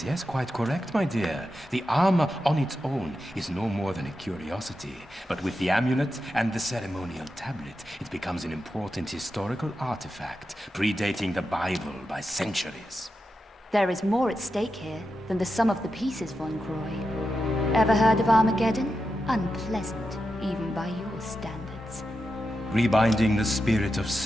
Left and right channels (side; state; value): both; normal; correlation 0.89